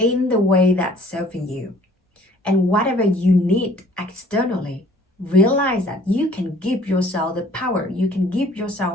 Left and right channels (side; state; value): both; normal; correlation 0.55